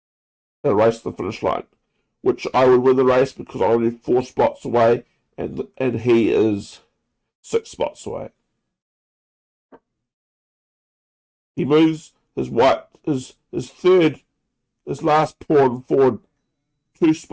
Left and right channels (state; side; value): identical; both; correlation 1.00